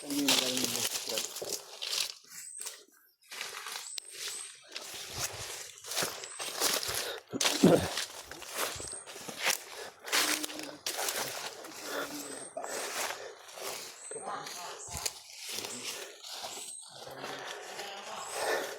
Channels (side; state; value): both; identical; correlation 1.00